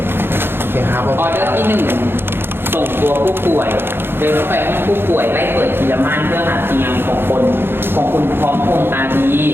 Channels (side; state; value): left; late; 0.11 ms